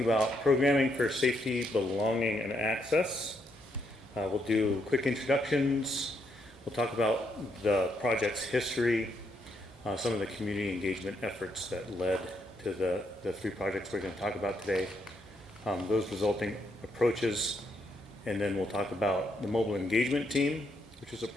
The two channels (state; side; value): normal; both; correlation 0.77